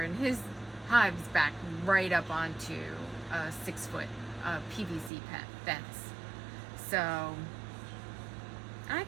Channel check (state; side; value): drops out; left; at 5.1 s